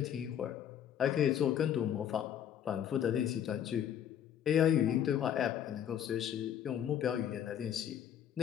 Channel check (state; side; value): quieter; right; 9.7 dB